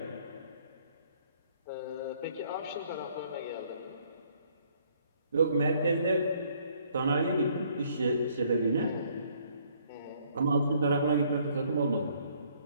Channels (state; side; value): inverted; both; correlation -0.64